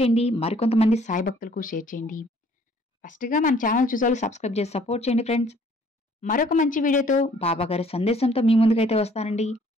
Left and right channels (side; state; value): both; normal; correlation 0.59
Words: మరికొంతమంది సాయి భక్తులకు షేర్ చేయండి. ఫస్ట్గా మన ఛానల్ చూసేవాళ్ళు సబ్స్క్రైబ్ చేసి సపోర్ట్ చేయండి ఫ్రెండ్స్. మరొక మంచి వీడియోతో బాబాగారి సందేశంతో మీ ముందుకైతే వస్తానండి.